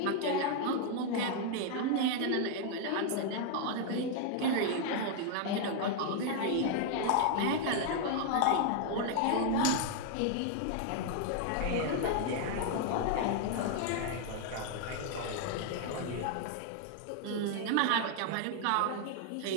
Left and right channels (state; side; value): different; both; correlation 0.00